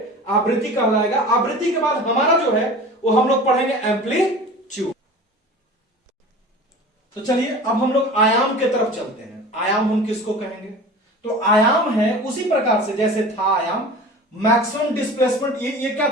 आवृत्ति कहलाएगा। आवृत्ति के बाद हमारा जो है वो हम लोग पढ़ेंगे एम्पलीट्यूड। तो चलिए अब हम लोग आयाम के तरफ चलते हैं। आयाम हम किसको कहेंगे, तो आयाम है उसी प्रकार से जैसे था आयाम, मैक्सिमम डिस्प्लेसमेंट, ये क्या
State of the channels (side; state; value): both; normal; correlation 0.38